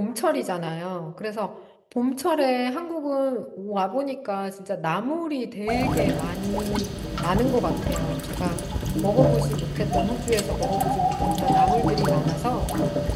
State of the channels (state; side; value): identical; both; correlation 1.00